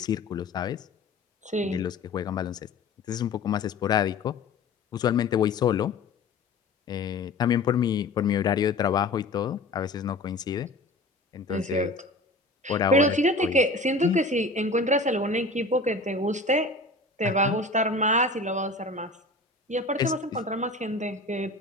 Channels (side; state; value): right; quieter; 3.0 dB